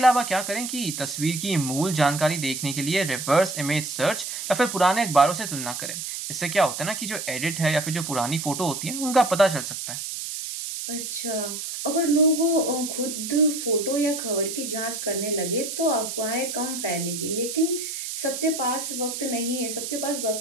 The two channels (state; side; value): noise; right; hiss, 6 dB below the sound